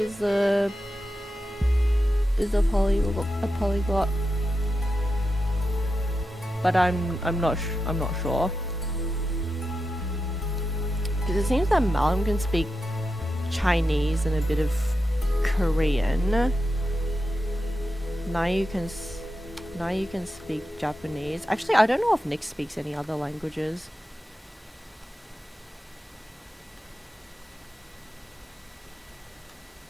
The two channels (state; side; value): normal; both; correlation 0.89